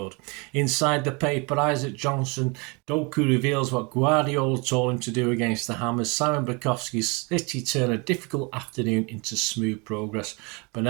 Inside the paper, Isaac Johnson, Doku reveals what Guardiola told him to do against the Hammers. Simon Bukowski's City turn a difficult afternoon into smooth progress.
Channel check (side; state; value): left; quieter; 29.8 dB